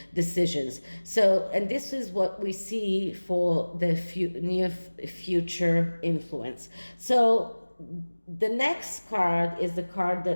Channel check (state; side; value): inverted; both; correlation -1.00